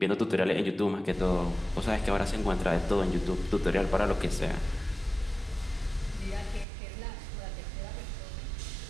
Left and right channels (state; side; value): drops out; left; at 6.7 s